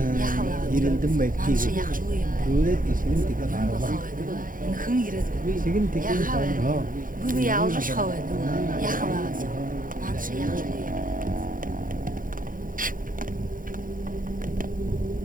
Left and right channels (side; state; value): left; late; 0.40 ms